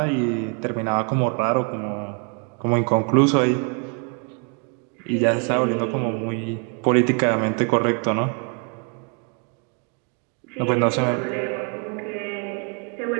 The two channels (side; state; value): left; quieter; 38.1 dB